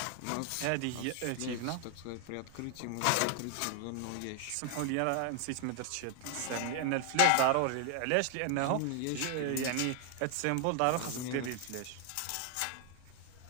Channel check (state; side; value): different; both; correlation 0.00